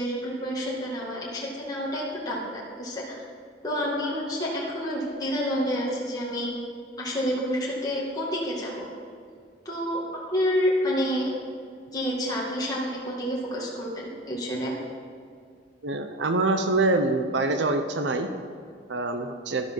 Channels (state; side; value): normal; both; correlation 0.33